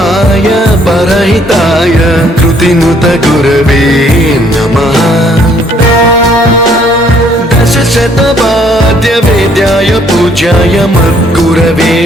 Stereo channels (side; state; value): both; normal; correlation 0.64